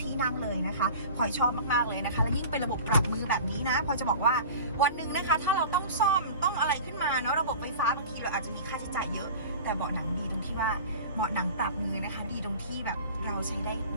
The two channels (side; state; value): both; inverted; correlation -0.38